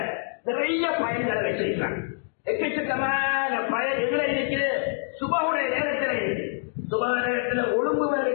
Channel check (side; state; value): right; silent; digital silence